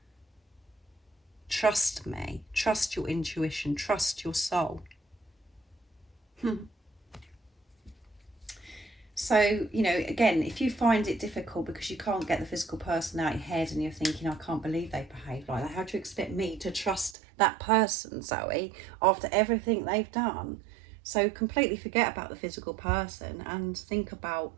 Trust me, trust your intuition, trust your soul. So, again, if you find it difficult because you can't get the physical person out of your head and you're thinking, I can't believe they behave like that, how do you expect me to trust that person, Zoe, after everything they've done? So completely forget about the physical person and think about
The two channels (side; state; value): left; drops out; at 17.2 s